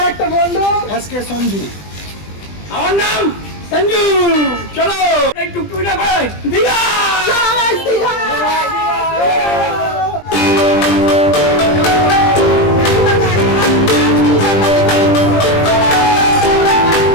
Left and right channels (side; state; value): right; late; 20 ms